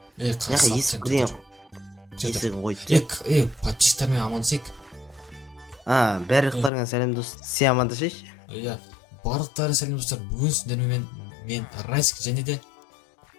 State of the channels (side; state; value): right; drops out; at 6.7 s